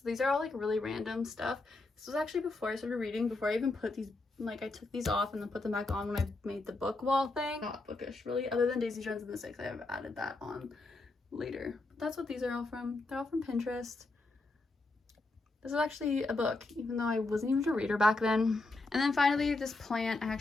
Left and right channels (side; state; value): right; quieter; 3.1 dB